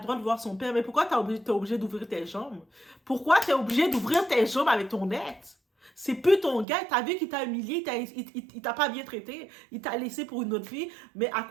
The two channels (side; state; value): left; drops out; at 6.7 s